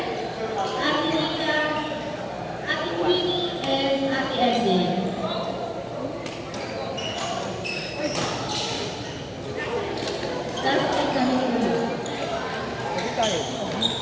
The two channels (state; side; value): identical; both; correlation 1.00